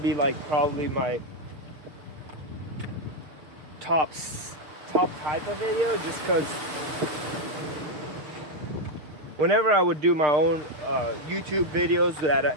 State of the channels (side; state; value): left; late; 6.5 ms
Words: like probably my top type of video, just because whenever I would do my own YouTube videos